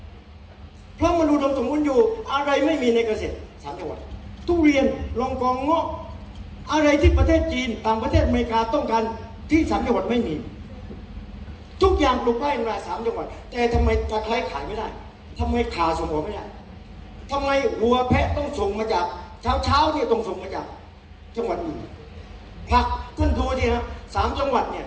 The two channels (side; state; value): both; identical; correlation 1.00